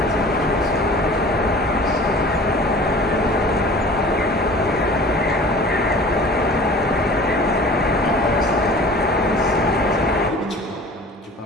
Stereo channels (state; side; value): normal; both; correlation 0.44